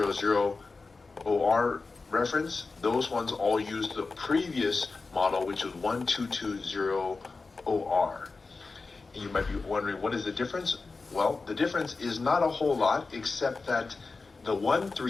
reference, those ones all used the previous model, which was 1220OR. And you might be wondering, what is the difference? Well, the difference is not a whole lot, except that the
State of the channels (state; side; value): quieter; right; 4.0 dB